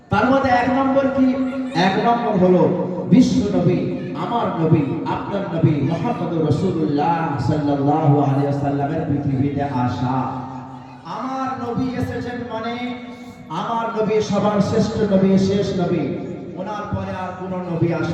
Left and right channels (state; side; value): identical; both; correlation 1.00